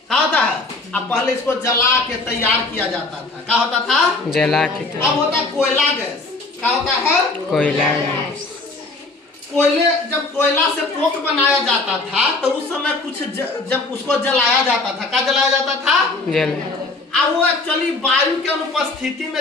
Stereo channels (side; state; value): right; quieter; 3.3 dB